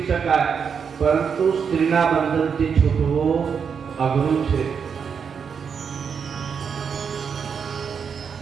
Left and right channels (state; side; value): quieter; left; 6.6 dB